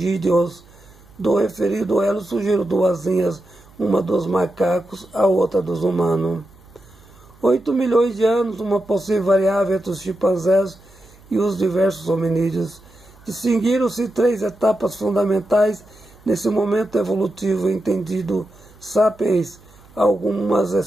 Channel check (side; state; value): right; noise; hum, 26 dB below the sound